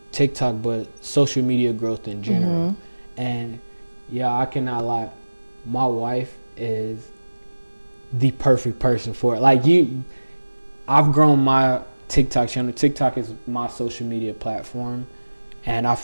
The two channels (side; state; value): both; inverted; correlation -1.00